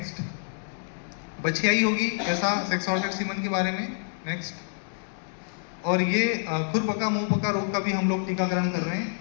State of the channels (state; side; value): silent; right; digital silence